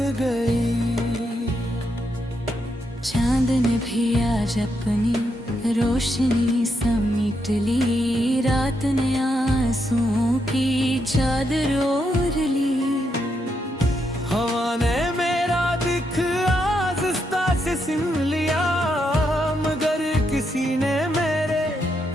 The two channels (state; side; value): normal; both; correlation 0.81